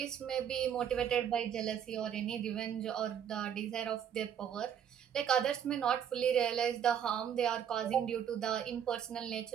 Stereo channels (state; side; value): quieter; left; 8.8 dB